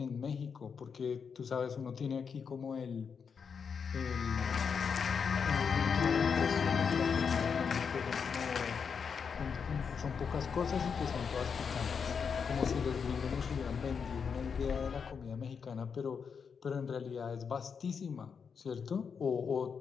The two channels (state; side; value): quieter; right; 6.2 dB